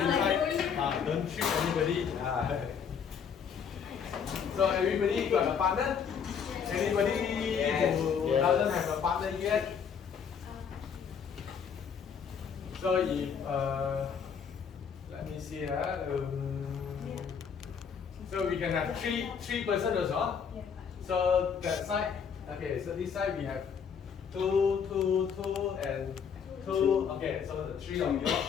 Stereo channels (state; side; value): quieter; right; 7.0 dB